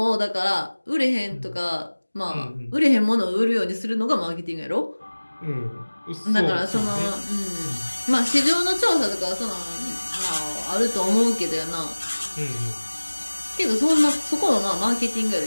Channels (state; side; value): inverted; both; correlation -1.00